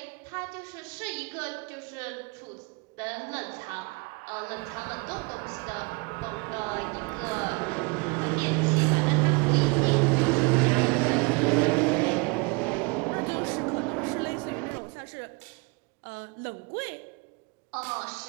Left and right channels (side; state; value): left; quieter; 29.6 dB